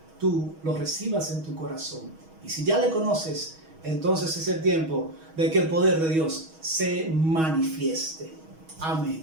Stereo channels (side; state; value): left; late; 6.3 ms